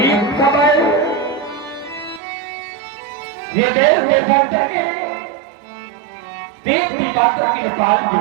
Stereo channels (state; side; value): drops out; left; at 2.2 s